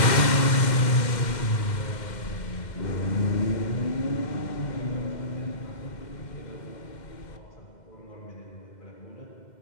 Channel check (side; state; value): right; late; 2.1 ms